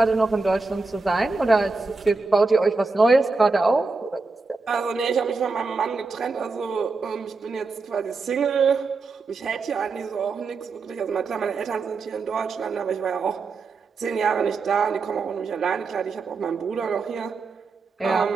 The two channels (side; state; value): left; quieter; 4.0 dB